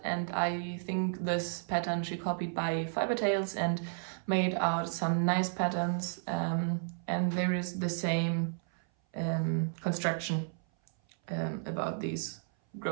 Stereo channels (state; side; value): silent; left; 56 dB below the other